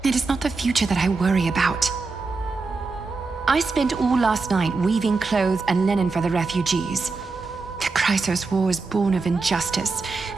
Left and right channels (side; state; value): left; quieter; 4.0 dB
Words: It is not the future that I worry about. I spent all last night weaving clothes and linen for the refugees. The Chrysos War is born of injustice